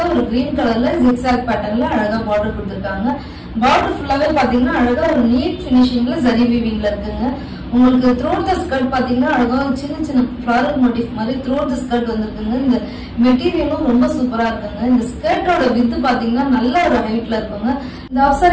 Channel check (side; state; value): both; identical; correlation 1.00